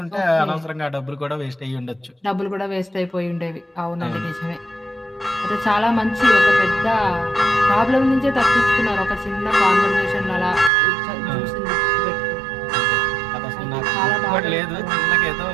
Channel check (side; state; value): left; drops out; at 10.7 s